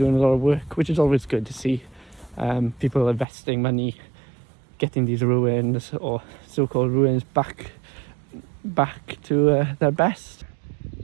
a lot of work, which is always good to see. People investing money, getting these ruins, or so-called ruins, back to their best.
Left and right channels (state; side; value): drops out; left; at 3.2 s